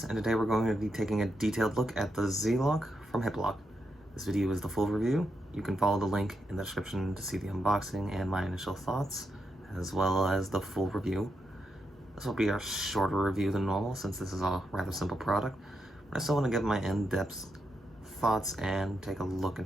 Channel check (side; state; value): both; normal; correlation 0.83